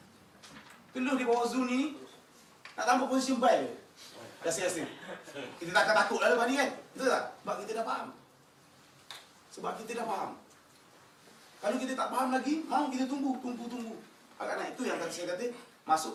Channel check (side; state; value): both; identical; correlation 1.00